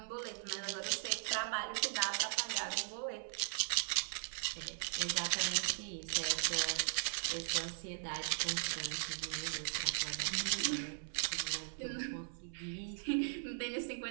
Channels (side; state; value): left; silent; 52 dB below the other